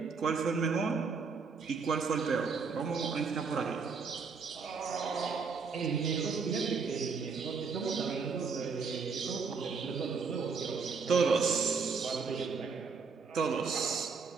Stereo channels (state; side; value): quieter; left; 5.1 dB